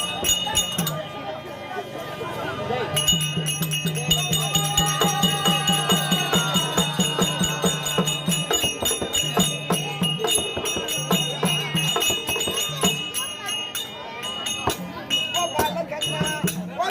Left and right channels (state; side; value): identical; both; correlation 1.00